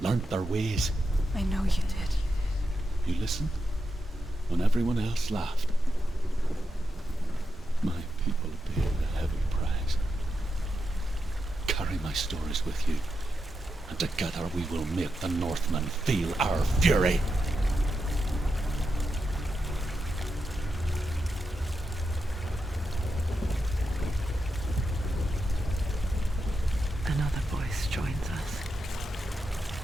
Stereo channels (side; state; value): both; normal; correlation 0.87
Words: learnt their ways. I know you did. You listened when everyone else laughed. My people paid a heavy price. Carry my stories with you, and together we will make the Northmen feel our fury. Another voice joins us.